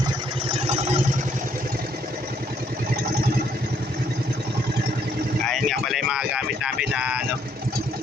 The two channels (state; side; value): normal; both; correlation 0.69